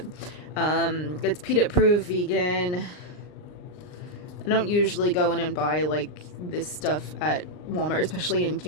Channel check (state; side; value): late; right; 39 ms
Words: It's peanut proof, vegan. I don't usually go in and buy like this stuff at Walmart, especially in